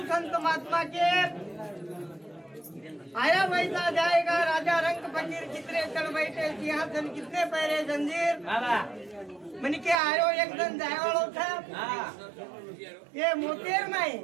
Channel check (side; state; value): left; drops out; at 10.0 s